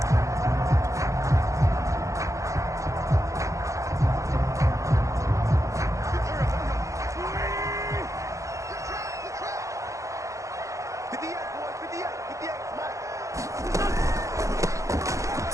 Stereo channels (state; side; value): late; left; 0.15 ms